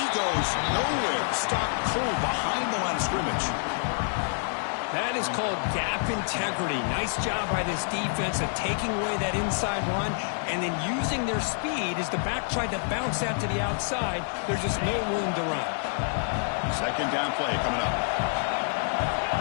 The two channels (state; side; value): silent; right; digital silence